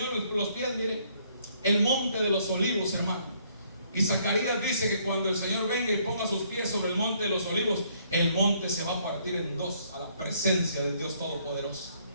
los pies, mire, el monte de los olivos, hermano. Y Zacarías dice que cuando el Señor venga y ponga sus pies sobre el monte de los olivos, el monte se va a partir en dos a la presencia del Dios Todopoderoso.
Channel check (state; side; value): inverted; both; correlation -0.67